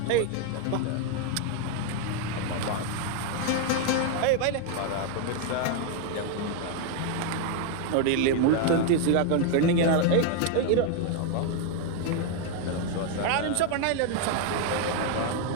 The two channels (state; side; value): different; both; correlation 0.01